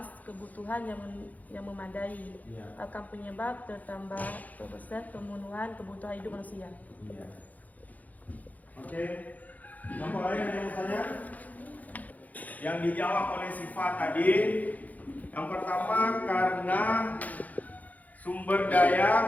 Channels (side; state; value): right; late; 0.078 ms